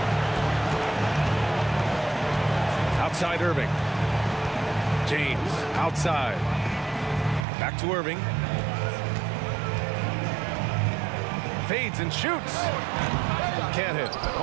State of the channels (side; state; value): left; drops out; at 7.5 s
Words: Outside Irving. James outside. Back to Irving. Fades and shoots. Can't hit.